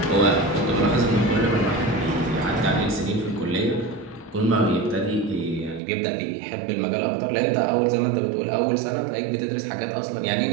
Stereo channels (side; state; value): left; drops out; at 5.8 s